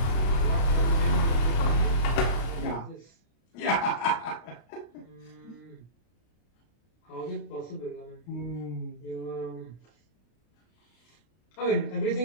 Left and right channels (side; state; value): right; late; 32 ms